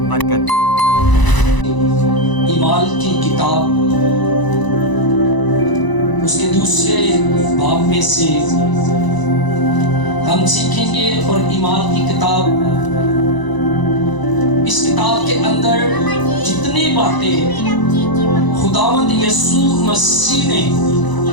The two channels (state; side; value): late; right; 1.0 ms